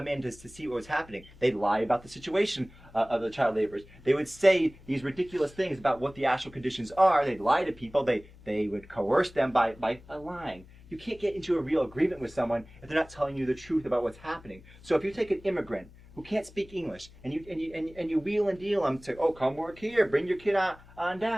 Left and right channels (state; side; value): noise; left; hum, 22 dB below the sound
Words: in to see what was happening. They'd lie about the situation of the child laborers. They would say these ridiculous things about what the actual conditions are. They'd lie to people. They would coerce them by lying. You can't get into a real agreement with someone if they're not telling you the truth about what's happening. So if you take an immigrant who can't speak English and you wheel and deal them to, oh, come work here, bring your kid on